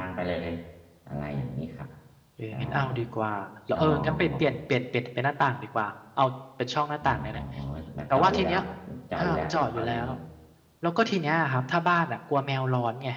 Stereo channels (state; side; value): identical; both; correlation 1.00